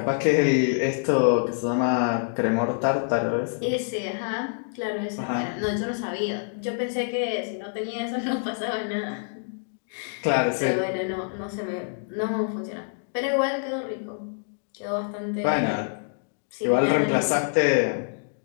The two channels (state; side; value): silent; right; digital silence